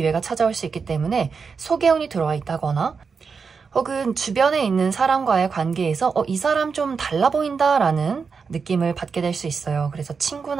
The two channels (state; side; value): quieter; left; 5.4 dB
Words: 찾아올 수 있기 때문에 소개운이 들어와 있다거나, 혹은 주변에 있는 사람과의 관계에서 이 사람 좀 달라 보인다라는 느낌을 받게 될 수 있어요. 그래서